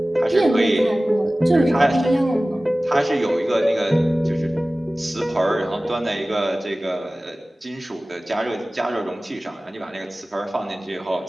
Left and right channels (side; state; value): both; normal; correlation 0.97